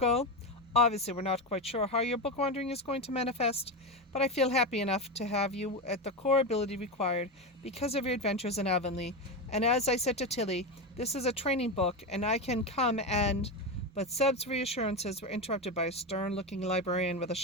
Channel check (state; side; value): normal; both; correlation 0.16